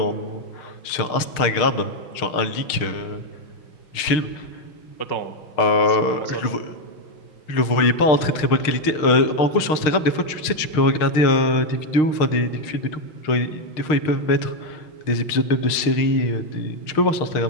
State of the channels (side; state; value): right; late; 6.5 ms